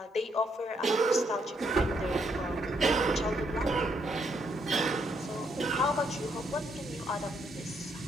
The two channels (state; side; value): normal; both; correlation 0.74